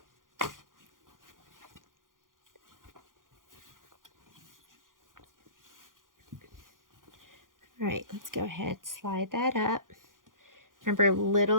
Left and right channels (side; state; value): left; late; 0.90 ms